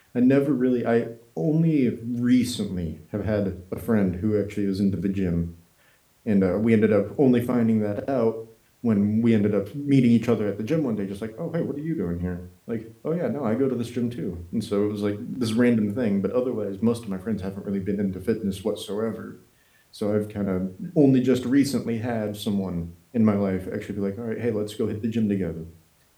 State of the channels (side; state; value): both; identical; correlation 1.00